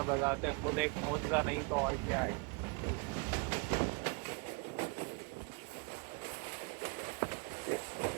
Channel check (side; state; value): left; quieter; 31.0 dB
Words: बजाते खुद एक मोजा नहीं तो और क्या है.